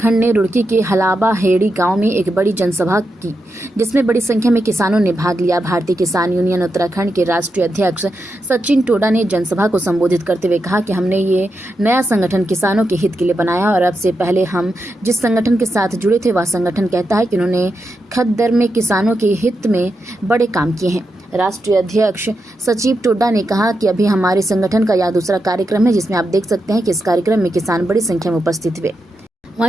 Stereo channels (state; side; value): normal; both; correlation 0.86